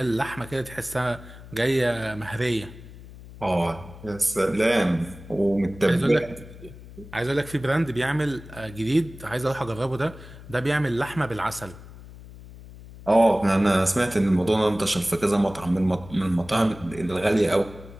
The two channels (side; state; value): left; noise; hum, 17 dB below the sound